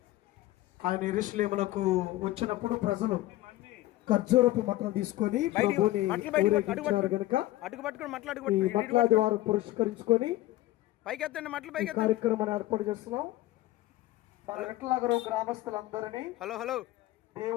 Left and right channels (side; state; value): right; quieter; 16.5 dB